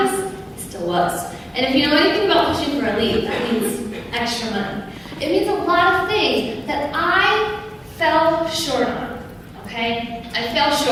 it still was. And if you know anything about pushing for elite, that means extra money. It means a lot of things that I fell short on, okay? I fell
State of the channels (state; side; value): identical; both; correlation 1.00